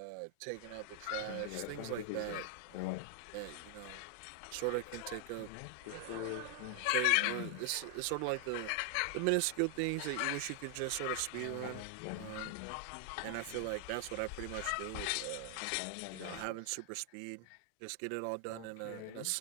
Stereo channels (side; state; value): both; different; correlation 0.00